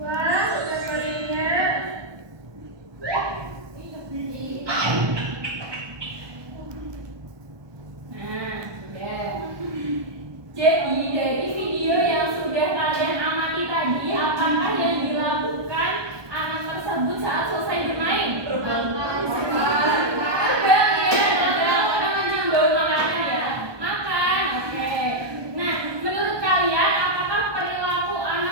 udah gorengnya. Nah, sudah. Jadi dari video yang sudah kalian amati tadi, apakah yang dilakukan anak tersebut saat selesai bermain? Terbang ya, terbang karena mencium bau makanan ya. Makan, oke. Nah, menurut kalian apakah perilaku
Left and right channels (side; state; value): left; late; 1.2 ms